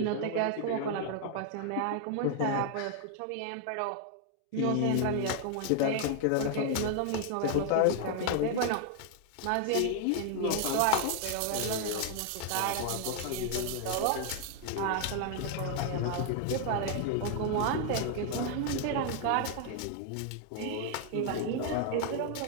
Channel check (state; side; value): different; both; correlation 0.00